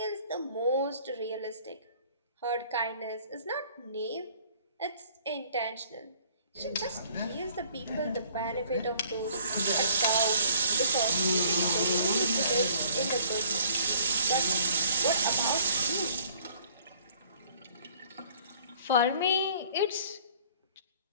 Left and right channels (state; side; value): inverted; both; correlation -0.57